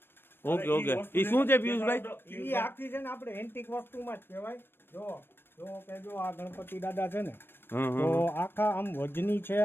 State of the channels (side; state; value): right; late; 0.10 ms